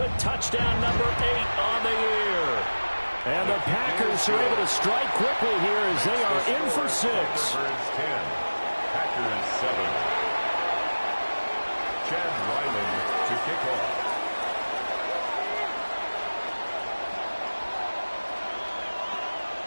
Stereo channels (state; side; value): inverted; both; correlation -1.00